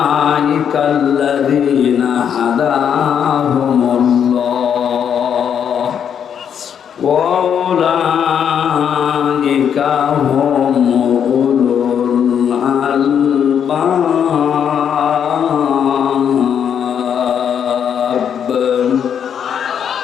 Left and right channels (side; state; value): right; quieter; 8.2 dB